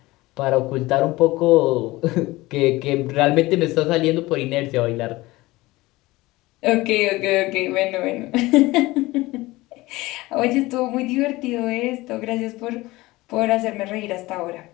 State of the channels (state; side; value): quieter; right; 19.9 dB